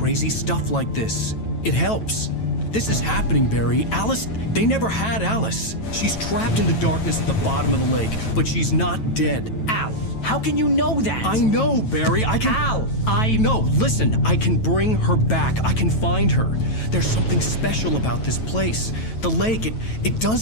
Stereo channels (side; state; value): right; late; 9.1 ms